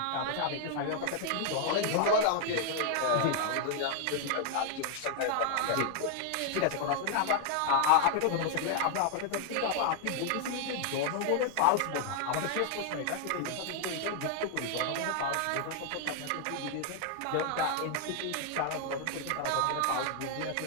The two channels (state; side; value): different; both; correlation 0.00